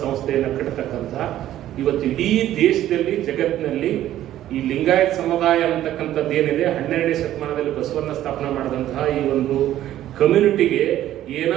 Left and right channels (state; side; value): quieter; left; 12.9 dB